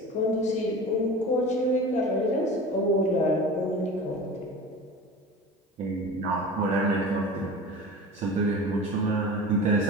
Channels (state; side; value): normal; both; correlation 0.35